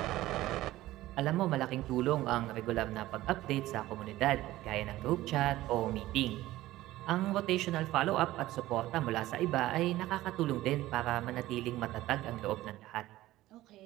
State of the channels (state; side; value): quieter; left; 16.1 dB